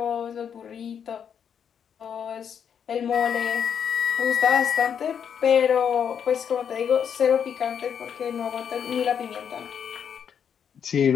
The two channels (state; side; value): quieter; right; 7.8 dB